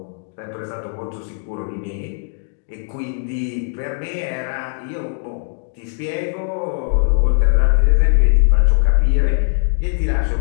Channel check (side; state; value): right; silent; digital silence